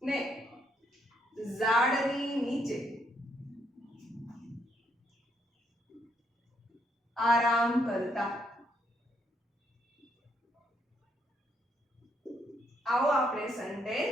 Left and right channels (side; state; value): both; normal; correlation 0.74